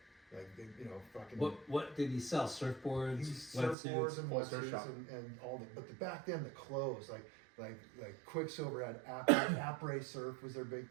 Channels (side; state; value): left; drops out; at 3.8 s